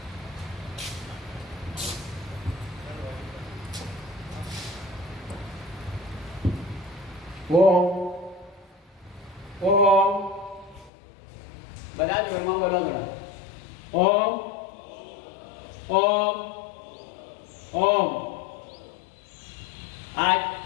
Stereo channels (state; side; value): drops out; right; at 10.9 s